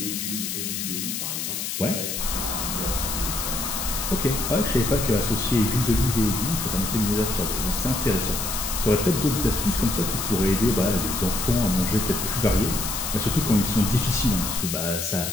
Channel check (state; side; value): noise; left; hiss, 3 dB below the sound